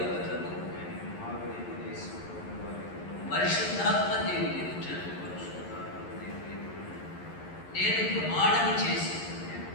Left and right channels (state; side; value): late; right; 11 ms